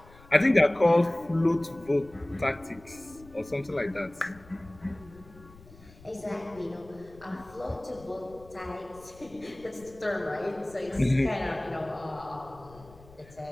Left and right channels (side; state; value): left; noise; rumble, 22 dB below the sound